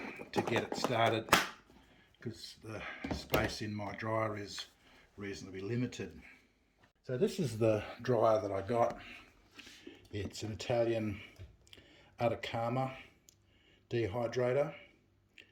to get it started because the space in my dryer is reasonably limited. So this is the dryer that I got. It's an Italian Atacama dehydrator,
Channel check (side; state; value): both; identical; correlation 1.00